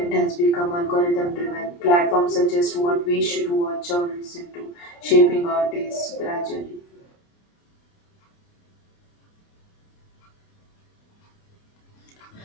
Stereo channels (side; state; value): right; late; 29 ms